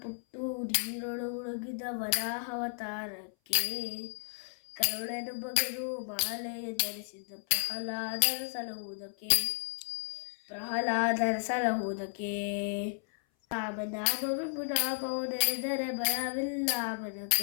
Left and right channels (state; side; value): silent; right; 56 dB below the other